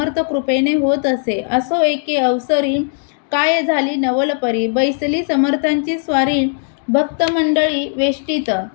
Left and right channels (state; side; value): silent; right; digital silence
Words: कृपेने होत असे. असो एके अवसरी काय झाली नवलपरी. बैसली समर्थांची स्वारी भक्तमंडळी वेष्टीत.